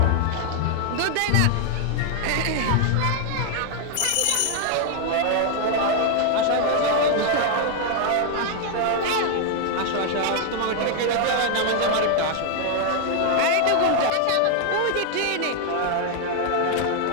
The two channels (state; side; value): different; both; correlation 0.00